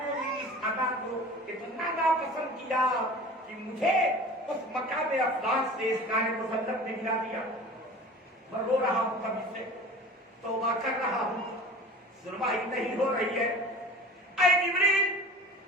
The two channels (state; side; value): normal; both; correlation 0.40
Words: اس ادا کو اتنا ناپسند کیا کہ مجھے اس مقام افضل سے اس کار مسلط نے گرا دیا۔ میں رو رہا ہوں کبھی سے، توبہ کر رہا ہوں، سنوائی نہیں ہو رہی ہے۔ اے جبریل